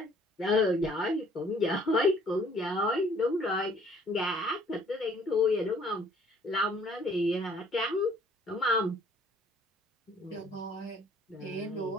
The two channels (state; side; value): normal; both; correlation 0.59